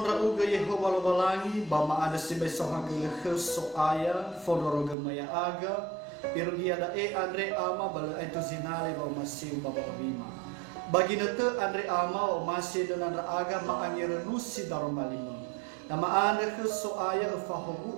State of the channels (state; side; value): drops out; left; at 5.0 s